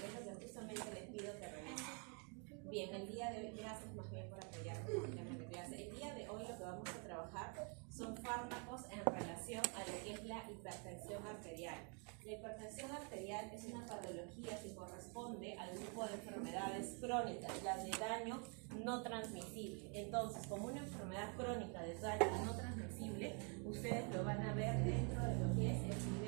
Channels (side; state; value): left; quieter; 37.0 dB